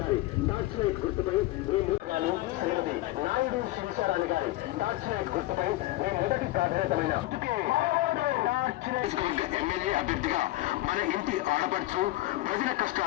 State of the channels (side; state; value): right; quieter; 17.6 dB